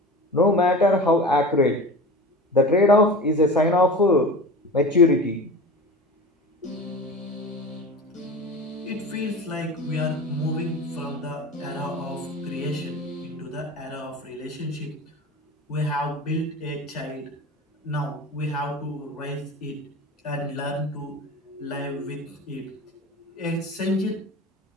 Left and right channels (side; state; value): both; normal; correlation 0.33